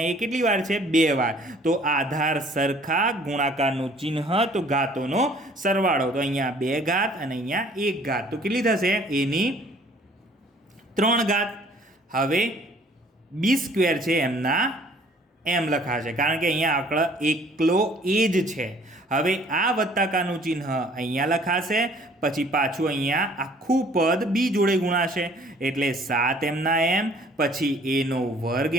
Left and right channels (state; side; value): normal; both; correlation 0.56